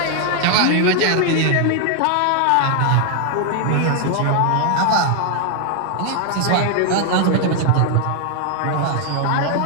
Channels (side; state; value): both; different; correlation 0.00